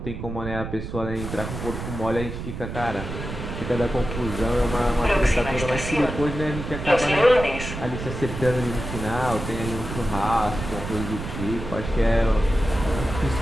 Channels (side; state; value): right; noise; rumble, 7 dB below the sound